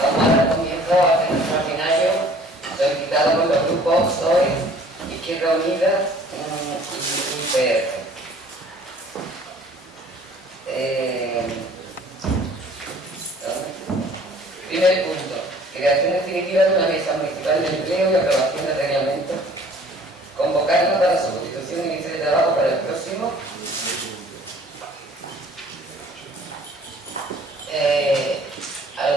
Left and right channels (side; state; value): both; normal; correlation 0.53